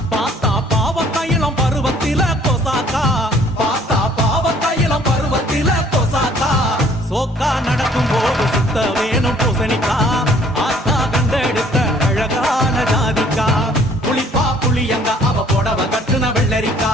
பார்த்தா பாவக்காயிலம் பருவத்தில கொசாக்கா பார்த்தா பாவக்காயிலம் பருவத்தில கொசாக்கா சோக்கா நடக்கும் போது சுத்த வேணும் பூசணிக்கா ஆத்தா கண்டெடுத்த அழகான ஜாதிக்கா புளிப்பா புளியங்க அவ புடவ கட்டுன வெள்ளரிக்கா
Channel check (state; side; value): normal; both; correlation 0.58